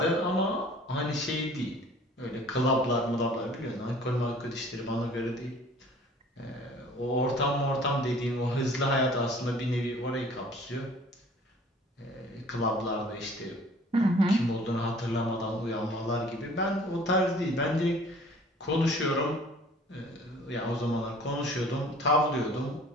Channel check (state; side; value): normal; both; correlation 0.51